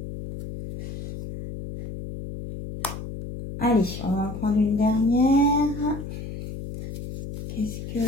Allez, on va en prendre une dernière. Qu'est-ce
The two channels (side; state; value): left; noise; hum, 8 dB below the sound